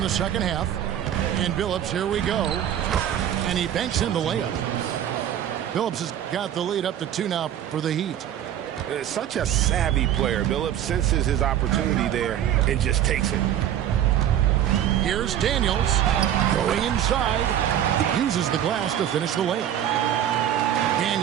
the second half. And Billups, here we go. And he banks in the layup. Billups has got the lead up to 2 now for the Heat. Such a savvy player. Billups senses his opportunity there and just takes it. Here's Daniels going inside. Uses the glass to finish the layup.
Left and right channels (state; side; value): quieter; left; 10.8 dB